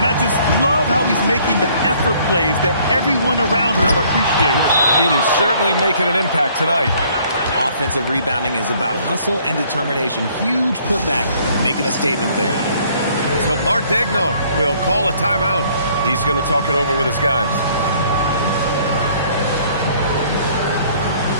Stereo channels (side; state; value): both; inverted; correlation -0.61